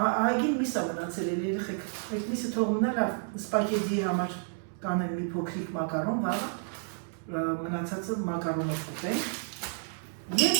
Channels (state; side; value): silent; left; digital silence